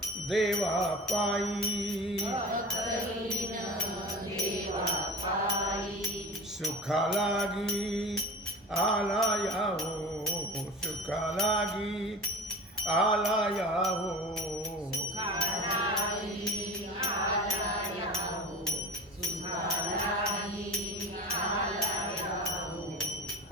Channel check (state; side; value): normal; both; correlation 0.33